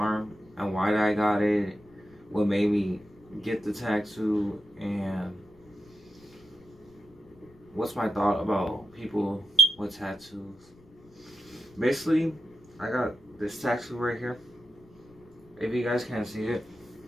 and why I got it, what made me get the tattoo, and what's my thought about people with tattoos. Basically, I got this tattoo right here. If you guys can't see it,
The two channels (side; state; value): left; noise; rumble, 27 dB below the sound